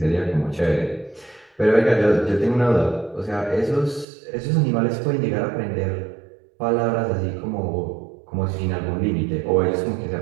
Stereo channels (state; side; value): drops out; left; at 4.0 s